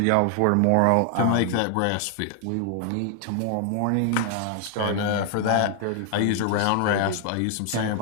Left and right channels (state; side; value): different; both; correlation 0.00